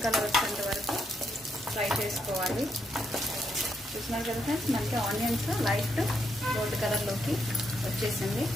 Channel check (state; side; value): normal; both; correlation 0.78